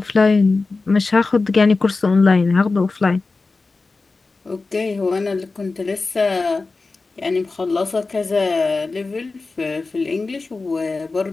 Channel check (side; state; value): right; quieter; 3.8 dB